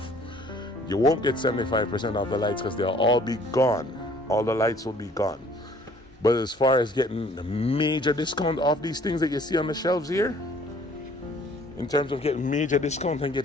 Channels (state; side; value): normal; both; correlation 0.56